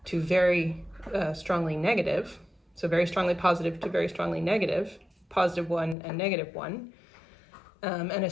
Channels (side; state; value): right; drops out; at 6.0 s